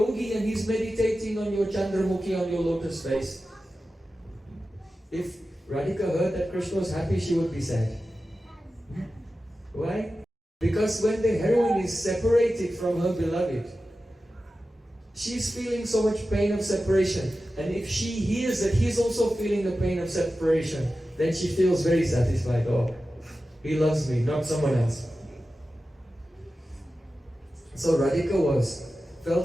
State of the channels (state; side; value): normal; both; correlation 0.93